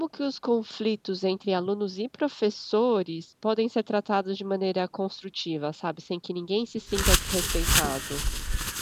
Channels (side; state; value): both; identical; correlation 1.00